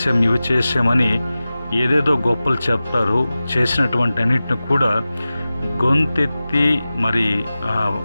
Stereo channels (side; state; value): both; inverted; correlation -0.96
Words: ఇవి చేసామని ఏదేదో గొప్పలు చెప్తారు. చేసినటువంటి అన్నిటిని కూడా గొంతెత్తి మరి